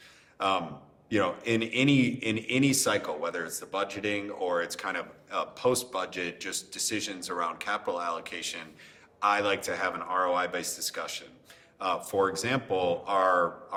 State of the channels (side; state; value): both; identical; correlation 1.00